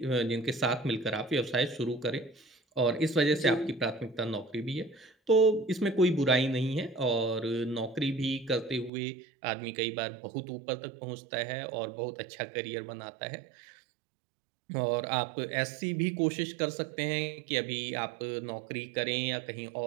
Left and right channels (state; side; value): drops out; left; at 8.9 s